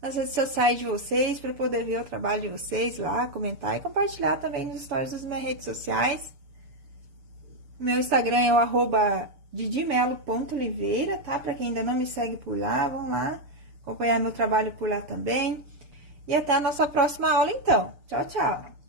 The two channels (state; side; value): late; left; 6.8 ms